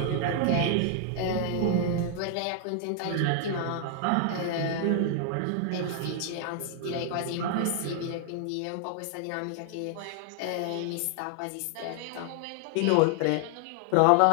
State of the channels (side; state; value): both; different; correlation 0.00